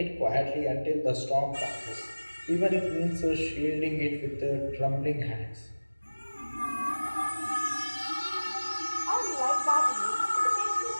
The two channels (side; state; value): both; inverted; correlation -1.00